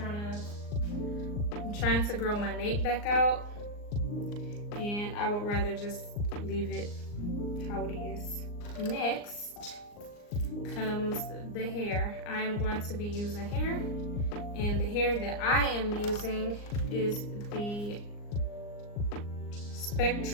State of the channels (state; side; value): late; right; 39 ms